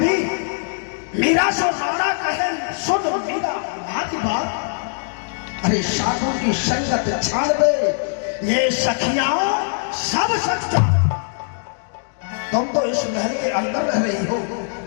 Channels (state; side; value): silent; right; digital silence